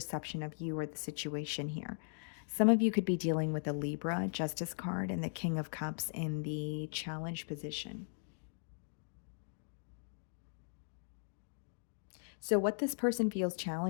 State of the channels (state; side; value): silent; right; digital silence